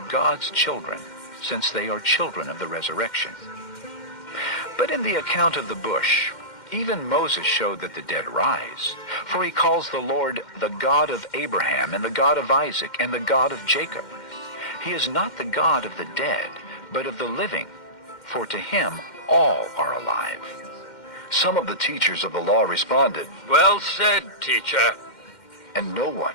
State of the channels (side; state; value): right; late; 2.1 ms